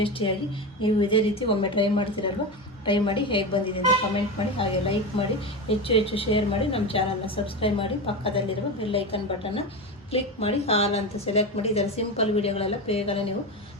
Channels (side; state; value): both; normal; correlation 0.20